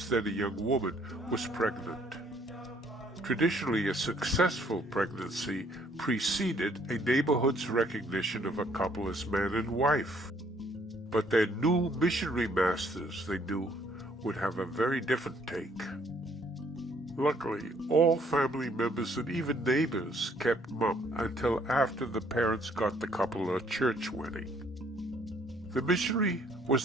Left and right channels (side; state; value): both; normal; correlation 0.64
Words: then a young woman, was pregnant. Traditionally, a successful pregnancy preceded a neighborhood's recognition of a couple as man and wife. But their new missionary masters, they knew, would have a very different take. Luckily, all family members and even neighbors kept mum until after the parents got the couple a church wedding. The missionary